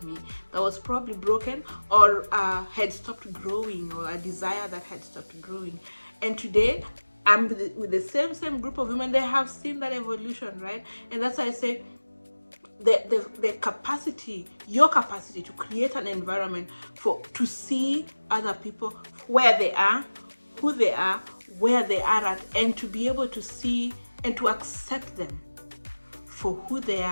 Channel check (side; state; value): both; inverted; correlation -1.00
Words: me that was probably broken or had stopped growing, or a desire that had stopped growing. And today I'm with the same group of women. They have seen that evolution, right? And that's why I say the capacity, your capacity to create an environment to see other people where they are, who they are, where they are at, and to be able to see and to accept them for who they